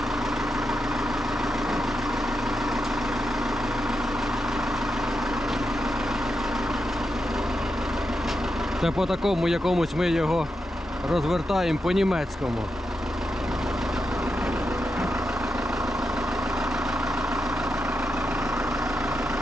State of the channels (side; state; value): both; normal; correlation 0.86